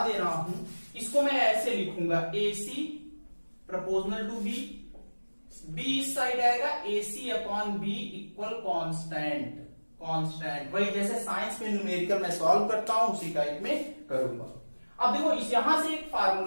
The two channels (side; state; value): both; inverted; correlation -1.00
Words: दे रहा हूं, इसको मैं ऐसे लिखूंगा, AC proportional to B, B इस साइड आएगा, AC upon B equal constant. Constant वही जैसे साइंस में न्यूमेरिकल मैं सॉल्व करता हूं उसी टाइप में करूंगा। अब देखो इस यहां से एक